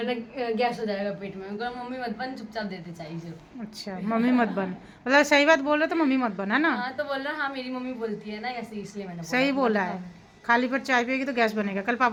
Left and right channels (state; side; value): identical; both; correlation 1.00